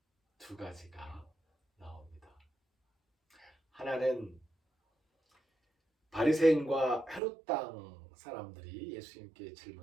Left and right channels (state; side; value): drops out; left; at 7.2 s